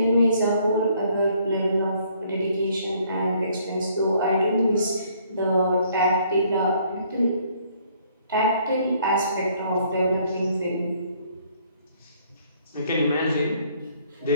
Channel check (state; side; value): inverted; both; correlation -0.64